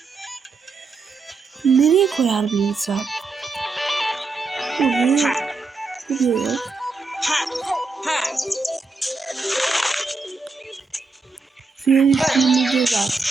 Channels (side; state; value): left; quieter; 4.1 dB